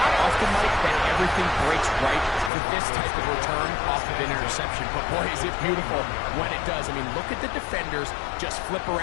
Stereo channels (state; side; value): drops out; right; at 2.5 s